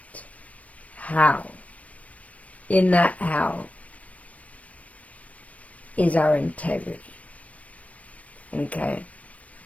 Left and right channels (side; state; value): right; late; 0.067 ms